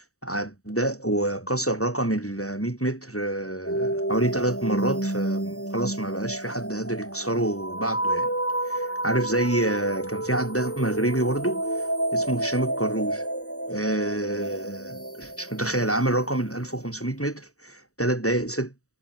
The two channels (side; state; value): right; late; 0.65 ms